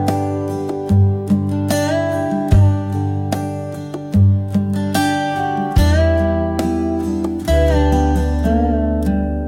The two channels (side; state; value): both; identical; correlation 1.00